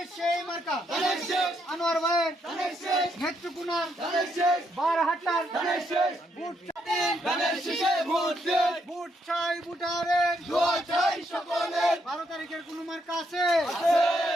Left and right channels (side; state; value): both; normal; correlation 0.76